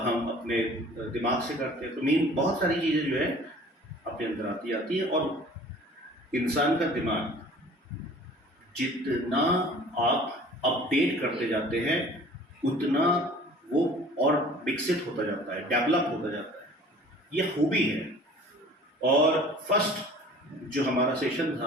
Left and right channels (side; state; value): both; normal; correlation 0.48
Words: हम अपने दिमाग से करते हैं। तो मीन बहुत सारी चीज़ें जो है अपने अंदर आती है, और इंसान का दिमाग जितना आप अपडेट करते जाते हैं उतना वो और विकसित होता जाता है, डेवलप होता जाता है, ये खूबी है। और फर्स्ट जो हमारा सेशन